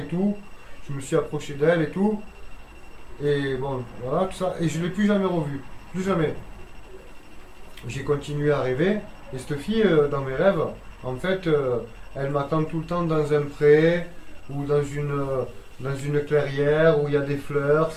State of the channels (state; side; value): identical; both; correlation 1.00